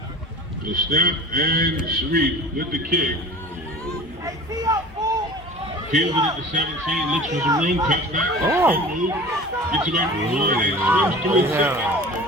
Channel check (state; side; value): normal; both; correlation 0.39